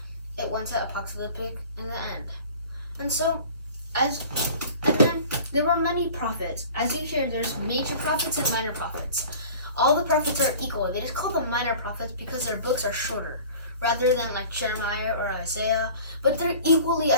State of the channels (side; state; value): both; inverted; correlation -0.44